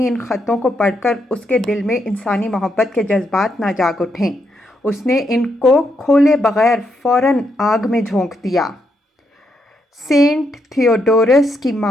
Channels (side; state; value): both; normal; correlation 0.79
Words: ان خطوں کو پڑھ کر اس کے دل میں انسانی محبت کے جذبات نہ جاگ اٹھیں۔ اس نے ان کو کھولے بغیر فوراً آگ میں جھونک دیا۔ سینٹ تھیوڈورس کی